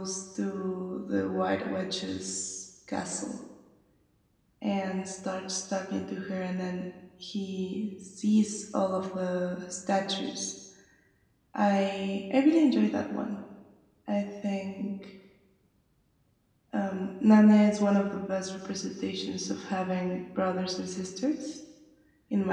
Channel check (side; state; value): both; identical; correlation 1.00